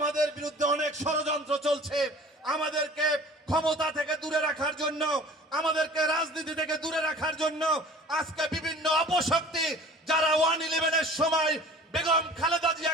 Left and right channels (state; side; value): normal; both; correlation 0.45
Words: বিরুদ্ধে অনেক ষড়যন্ত্র চলছে। আমাদেরকে ক্ষমতা থেকে দূরে রাখার জন্য, আমাদেরকে রাজনীতি থেকে দূরে রাখার জন্য আজকে বিভিন্ন অপশক্তি যারা 1/11-এর সময় বেগম খালেদা